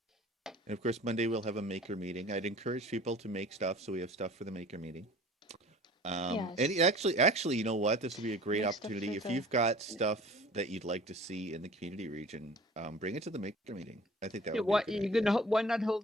And of course, Monday we'll have a maker meeting. I'd encourage people to make stuff, so we have stuff for the maker meeting. And actually, you know what? This would be a great opportunity. If you've got stuff that you'd like to see in the community region, bring it to the maker meeting. I think that would be why not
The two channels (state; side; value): normal; both; correlation 0.45